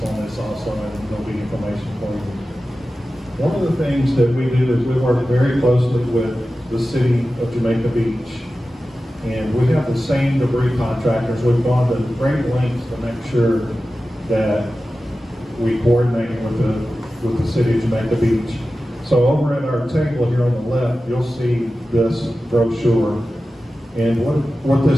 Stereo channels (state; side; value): normal; both; correlation 0.94